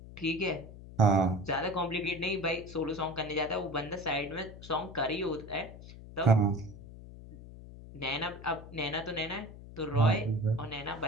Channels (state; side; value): noise; left; hum, 15 dB below the sound